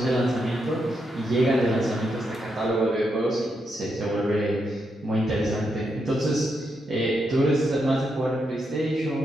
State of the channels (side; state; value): both; normal; correlation 0.82